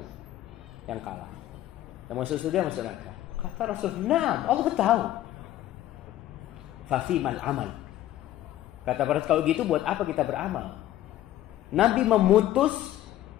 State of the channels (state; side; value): quieter; right; 13.8 dB